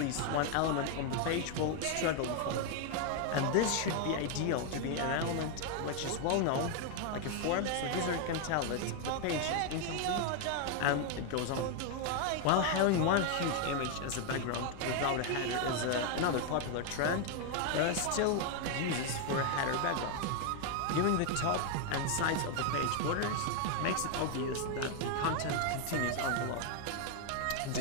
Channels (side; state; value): both; different; correlation 0.01